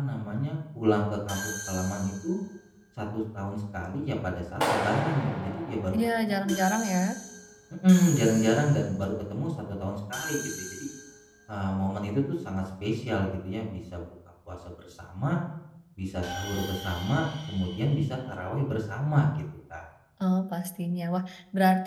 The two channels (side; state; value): both; identical; correlation 1.00